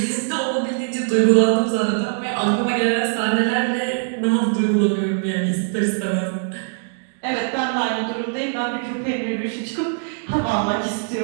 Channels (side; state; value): left; silent; digital silence